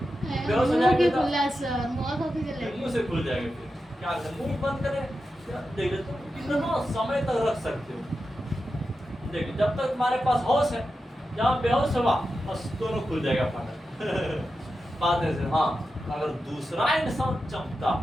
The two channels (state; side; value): normal; both; correlation 0.90